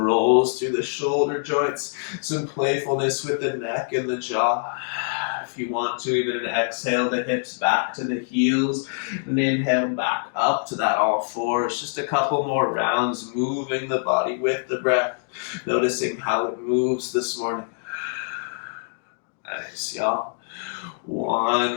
through the shoulder joints, some playfulness with the neck and the jaw. If you want to, even an exhale, the hips back to the heels, and inhale back up to that all fours. Just a couple more rounds, moving the body with the breath, noticing how it moves this morning. Nice, y'all.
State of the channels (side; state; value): right; silent; digital silence